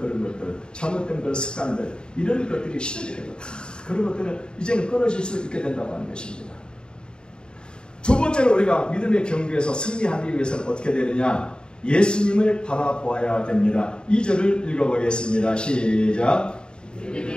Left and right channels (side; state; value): right; late; 0.050 ms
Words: 것들, 잘못된 그런 습관들, 이런 것들이 시들게 되고 다 그런 것들은 이제는 끊어질 수 있게 된다고 하는 것입니다. 두 번째로 우리가 믿음의 경주에서 승리하기 위해서는 어떻게 되느냐? 예수님을 바라보아야 됩니다. 2절을 읽어보겠습니다. 시작.